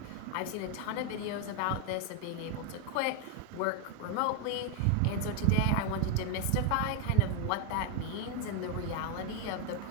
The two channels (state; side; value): different; both; correlation 0.00